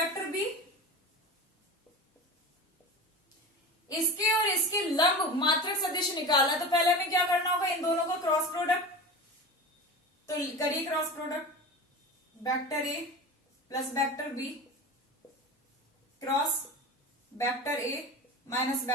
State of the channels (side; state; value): both; normal; correlation 0.30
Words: b इसके और इसके लंब मात्रक सदिश निकालना, तो पहले हमें क्या करना होगा, इन दोनों का क्रॉस प्रोडक्ट। तो करिए cross product, vector a plus vector b cross vector a minus